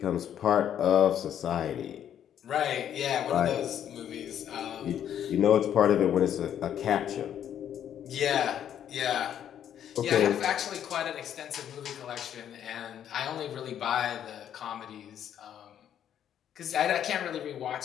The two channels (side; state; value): right; quieter; 9.9 dB